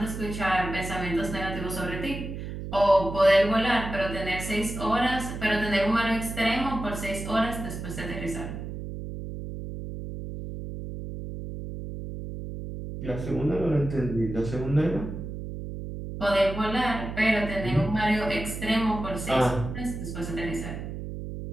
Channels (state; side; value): noise; right; hum, 7 dB below the sound